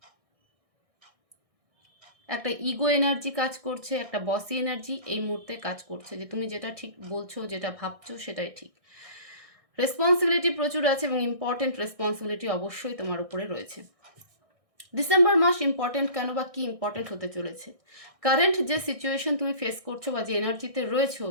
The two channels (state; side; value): late; left; 1.6 ms